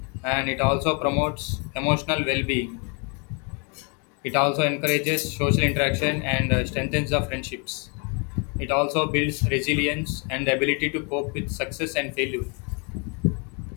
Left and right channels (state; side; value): quieter; right; 35.6 dB